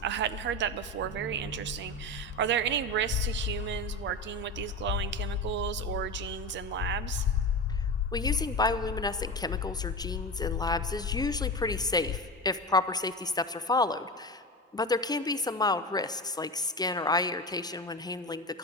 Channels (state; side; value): normal; both; correlation 0.24